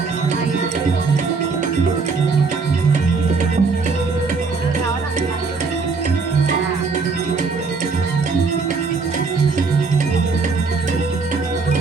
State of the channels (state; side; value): quieter; left; 4.5 dB